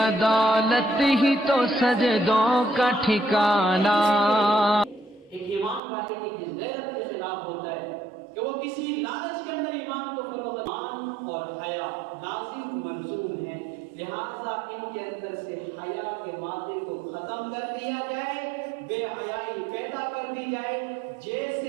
ہی تو سجدوں کا ٹھکانہ۔ ایک ایمان والے کی غیرت کے خلاف ہوتا ہے کہ وہ کسی لالچ کے اندر ایمان کو فروغ ایمان اور حیا لازم ملزوم ہے، لہذا ان کے اندر سے حیا کے مادے کو ختم کر دیا جائے، بے حیائی پیدا کر دی جائے۔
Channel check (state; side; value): drops out; left; at 5.8 s